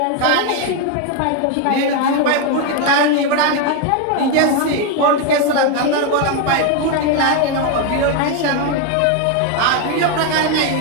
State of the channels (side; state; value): both; different; correlation 0.02